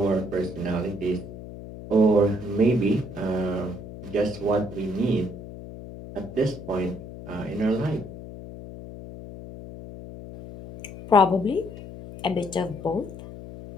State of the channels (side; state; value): left; noise; hum, 13 dB below the sound